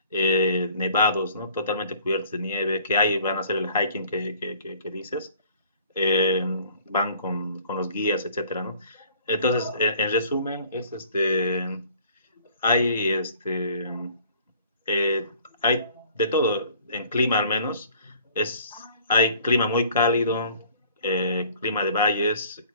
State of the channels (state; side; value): inverted; both; correlation -0.54